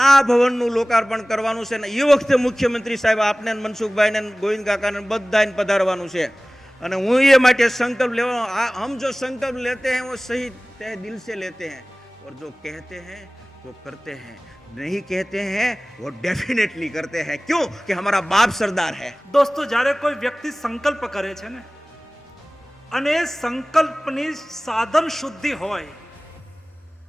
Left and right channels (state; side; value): normal; both; correlation 0.98